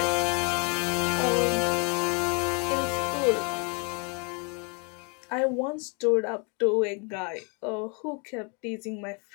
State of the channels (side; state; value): right; quieter; 35.6 dB